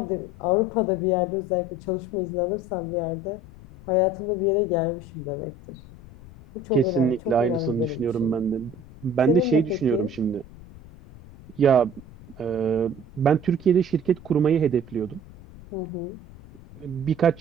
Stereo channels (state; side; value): noise; left; rumble, 19 dB below the sound